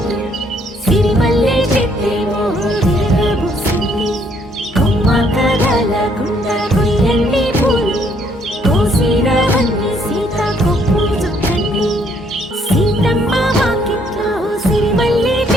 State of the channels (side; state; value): both; normal; correlation 0.67